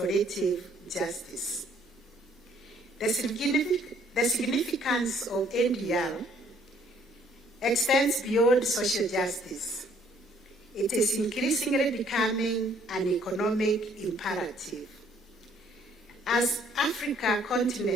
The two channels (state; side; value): normal; both; correlation 0.63